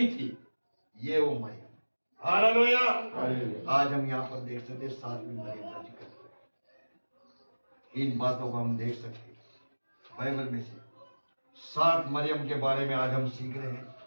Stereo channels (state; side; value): inverted; both; correlation -1.00